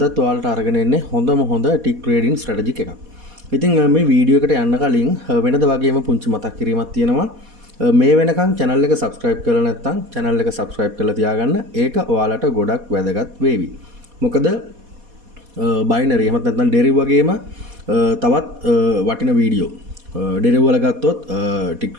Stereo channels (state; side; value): late; left; 4.2 ms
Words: ඔයාලට අරගෙන එන්නේ හොඳම හොඳ ටික් ට්‍රේඩින් ස්ට්‍රැටජි එකක්. ඉතින් මේ වීඩියෝ එකට යන්න කලින් වෙනද වගේම පුංචි මතක් කිරීමක් තියෙනවා. මේ වෙනකන් channel එක subscribe කරලා නැත්නම් channel එක subscribe කරලා තියාගන්න. ඒක ඔයාලට ගොඩක් වැදගත් වේවි. මොකද බයිනරි එහෙමත් නැත්නම් ඩෙරිව් වගේම තවත් වටින වීඩියෝ ඩෙරිව් වල ගත්තොත් ටික්